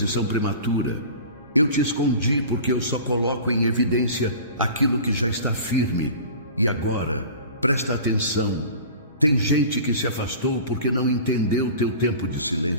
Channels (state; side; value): inverted; both; correlation -0.39